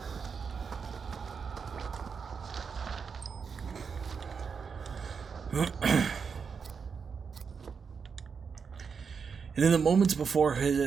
And in the moments before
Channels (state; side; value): quieter; left; 5.9 dB